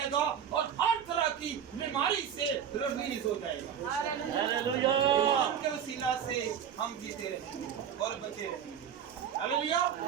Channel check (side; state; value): left; quieter; 8.6 dB